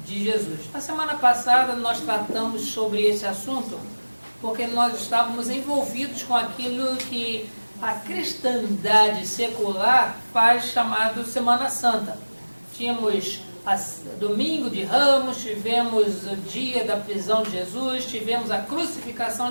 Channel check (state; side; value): inverted; both; correlation -1.00